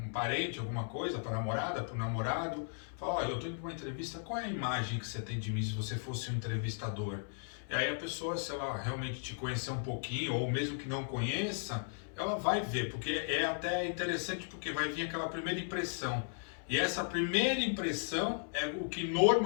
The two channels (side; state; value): right; silent; 54 dB below the other